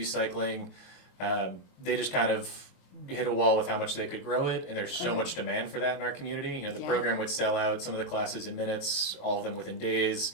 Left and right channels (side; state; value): right; late; 22 ms